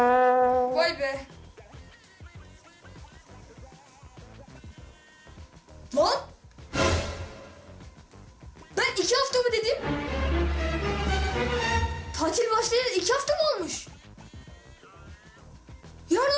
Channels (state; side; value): identical; both; correlation 1.00